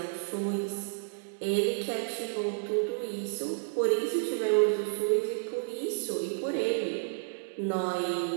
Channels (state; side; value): silent; left; digital silence